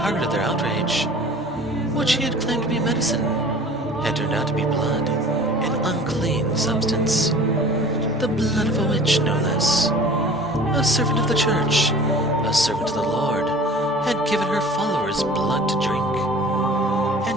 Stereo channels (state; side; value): normal; both; correlation 0.44